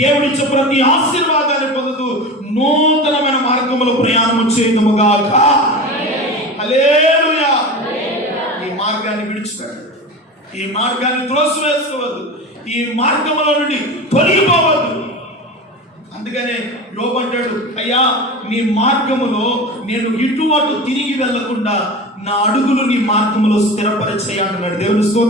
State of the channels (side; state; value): both; normal; correlation 0.29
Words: ప్రతి ఆశీర్వాదాన్ని పొందుతూ నూతనమైన మార్గములో ప్రయాణం చేయదుముగాక. హల్లెలూయా. ఈ మార్గాన్ని విడిచిపెట్టండి. ఈ మార్గాన్ని త్రోసివేసుకోవద్దు. ఈ మార్గములో నుండి తొలగిపోవద్దు. అందుకనే యోబు అంటాడు, అయ్యా నీ మార్గములో నేను ఇటు అటు తిరిగి వెళ్లకుండా నా అడుగులు నీ మార్గములో స్థిరపరిచేయి అంటున్నాడు. దేవుని